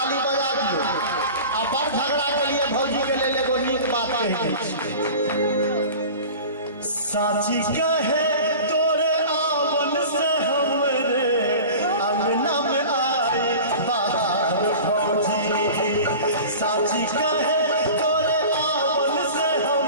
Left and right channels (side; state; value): both; inverted; correlation -0.37